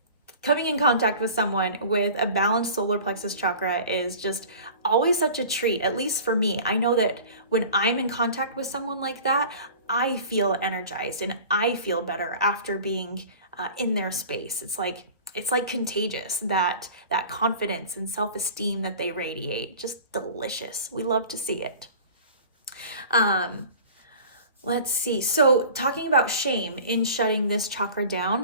coming in contact with someone with a balanced solar plexus chakra is just always such a treat, at least for me. I know that when I'm in contact with someone like that, I feel energized and I feel better after being in their space. It's like contagious, that confidence and self-esteem that they radiate. Just delicious. We love to see it. Let's see. So talking about shame in shutting this chakra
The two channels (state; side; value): inverted; both; correlation -0.41